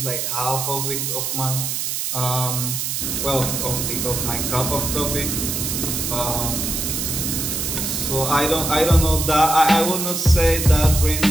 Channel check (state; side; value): noise; right; hiss, 2 dB below the sound